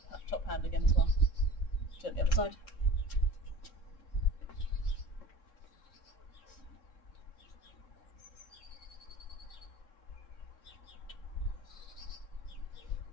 top hand again as well. Do it on the other side.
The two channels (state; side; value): late; right; 3.7 ms